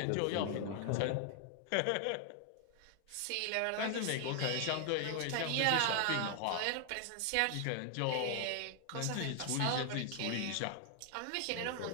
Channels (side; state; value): both; different; correlation 0.00